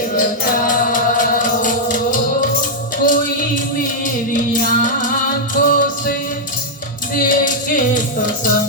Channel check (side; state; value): both; normal; correlation -0.06